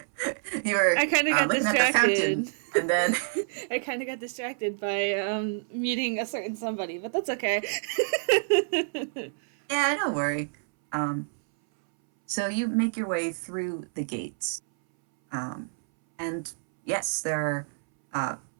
were I kind of got looking at the fountain, distracted. and then I kind of got distracted by meeting a certain somebody, but that's okay. yeah, don't worry. Um, so you make your way through the gates, um, and yes, uh,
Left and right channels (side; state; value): left; silent; 60 dB below the other